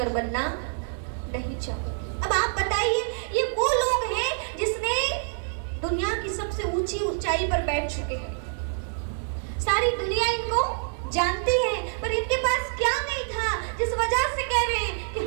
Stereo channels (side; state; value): left; silent; digital silence